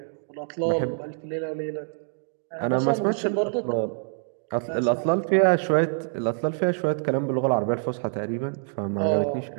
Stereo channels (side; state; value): left; silent; digital silence